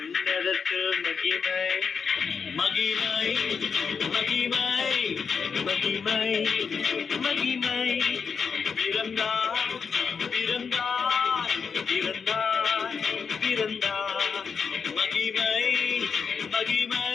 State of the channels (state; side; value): quieter; right; 5.9 dB